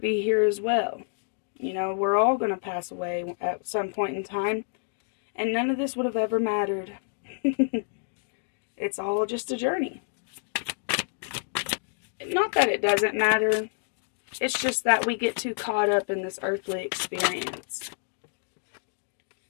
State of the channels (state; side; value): silent; right; digital silence